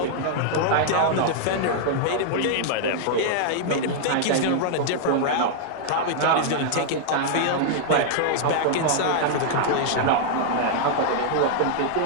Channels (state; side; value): different; both; correlation -0.01